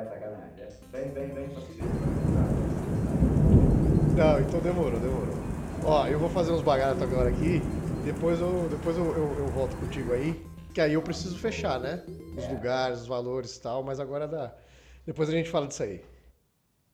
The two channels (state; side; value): identical; both; correlation 1.00